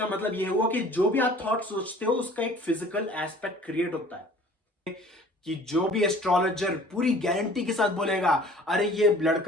मतलब यह हुआ कि जो भी आप थॉट सोचते हो उसका एक फिजिकल एस्पेक्ट क्रिएट होता है। कि जो भी एस्ट्रोलॉजर पूरी गारंटी के साथ बोलेगा अरे ये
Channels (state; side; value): normal; both; correlation 0.50